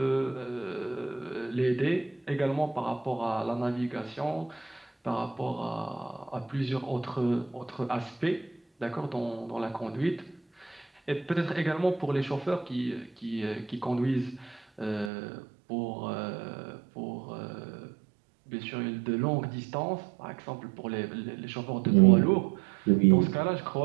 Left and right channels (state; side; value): drops out; left; at 15.1 s